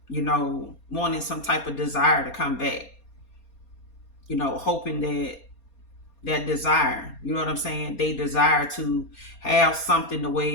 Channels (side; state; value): right; late; 4.3 ms